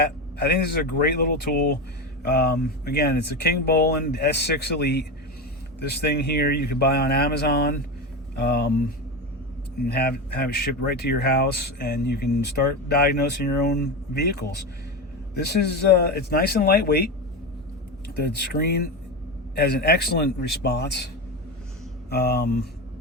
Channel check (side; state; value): both; normal; correlation 0.19